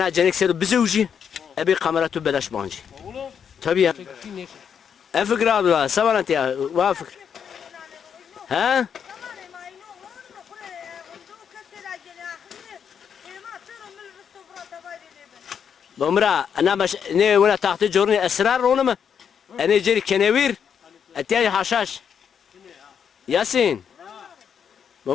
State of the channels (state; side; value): quieter; right; 7.6 dB